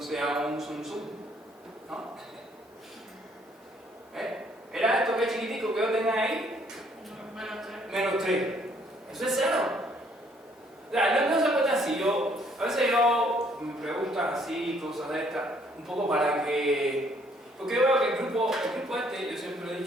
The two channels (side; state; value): both; normal; correlation 0.65